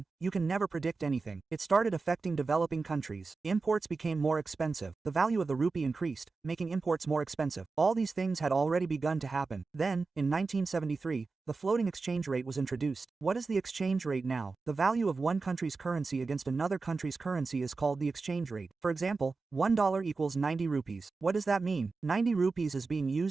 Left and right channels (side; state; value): left; quieter; 4.1 dB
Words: you can never predict anything. It started affecting developing countries. Imports became more expensive. The value of the rupee increased, making imports more expensive. All these things had already begun to happen. Then, in 1973, the floating exchange rate was introduced. What is the exchange rate now? The value of one country's currency against another country's currency is called the exchange rate. For example, $1 equals 90 rupees. What does that mean? 90 rupees is being